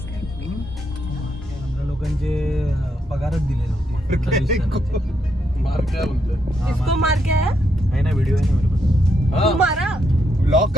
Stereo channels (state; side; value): normal; both; correlation 0.78